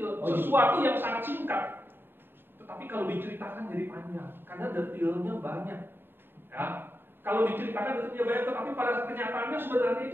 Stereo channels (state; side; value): late; left; 0.10 ms